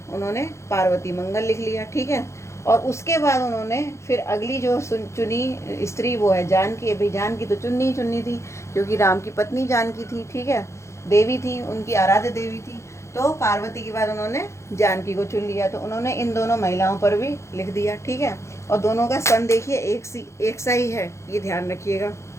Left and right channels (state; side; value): late; right; 0.14 ms